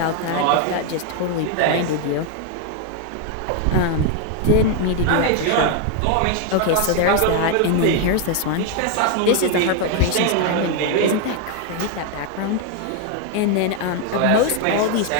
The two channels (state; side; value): different; both; correlation 0.01